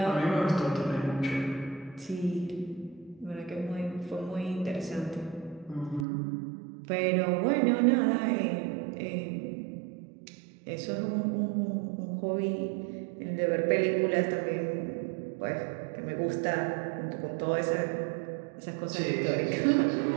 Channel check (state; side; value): drops out; left; at 6.1 s